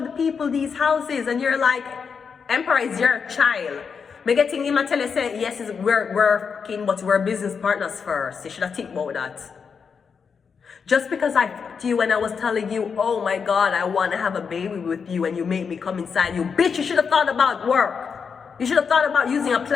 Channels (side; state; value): right; quieter; 6.0 dB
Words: people these houses? And you're like, Emperor is your child. Me getting him and tell you, say, yes, we're working, but we're business partners first. You should have think about that. Just because I talked to you when I was telling you, oh my God, I want to have a baby with you and you make me come inside you. Bitch, you should have thought about work. You should have thought about using a